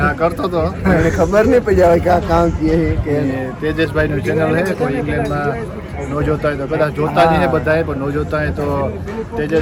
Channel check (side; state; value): both; identical; correlation 1.00